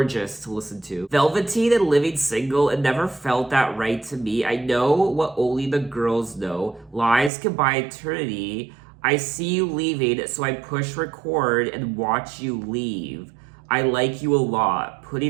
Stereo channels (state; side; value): drops out; left; at 7.3 s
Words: to listen to. Velveteen and Living Single, it never felt that right to me. I know what only the girls know. Lies can buy eternity. I see you leaving, so I push record and watch you leave. I like you a lot.